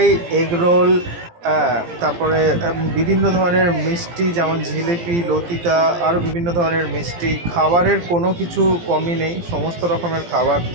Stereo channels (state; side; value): late; left; 17 ms